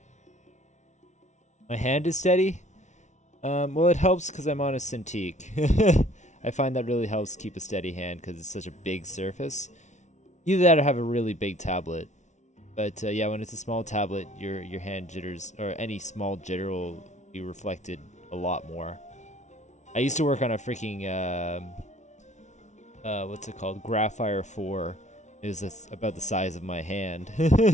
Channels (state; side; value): late; right; 0.34 ms